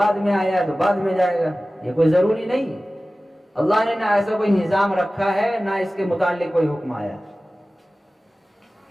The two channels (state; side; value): normal; both; correlation 0.97